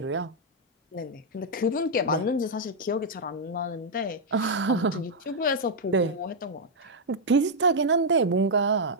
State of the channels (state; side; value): normal; both; correlation -0.04